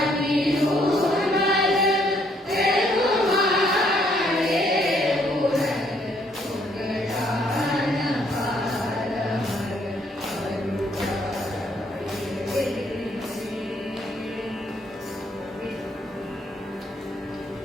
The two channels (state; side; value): normal; both; correlation 0.68